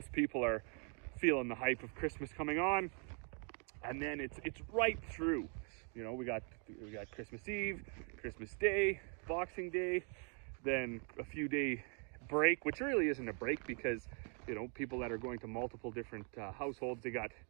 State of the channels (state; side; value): quieter; left; 39.6 dB